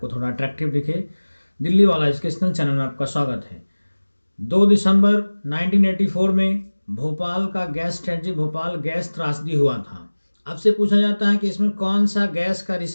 थोड़ा अट्रैक्टिव दिखे। दिल्ली वाला एजुकेशनल चैनल में आपका स्वागत है। 2 दिसंबर 1984 में भोपाल का गैस स्ट्रेटजी भोपाल गैस त्रासदी हुआ था। आपसे पूछा जाता है कि इसमें कौन सा गैस का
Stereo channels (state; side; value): inverted; both; correlation -1.00